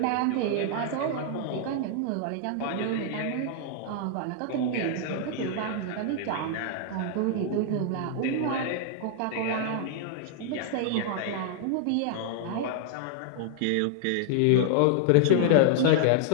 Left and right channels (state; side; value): different; both; correlation -0.01